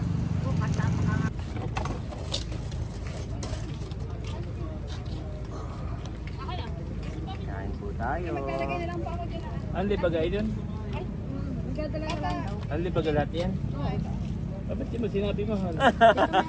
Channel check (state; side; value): identical; both; correlation 1.00